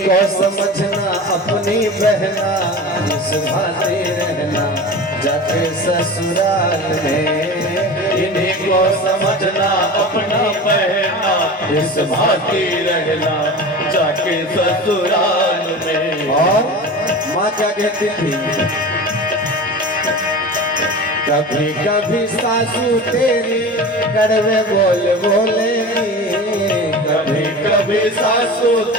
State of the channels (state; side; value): normal; both; correlation 0.32